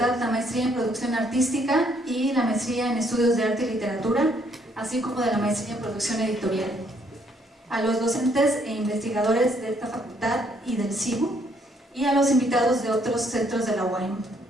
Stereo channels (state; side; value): normal; both; correlation 0.68